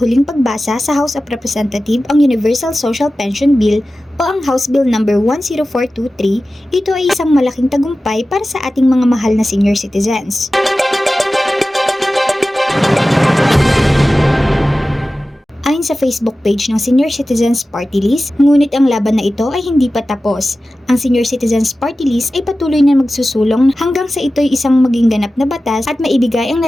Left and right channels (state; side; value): normal; both; correlation 0.95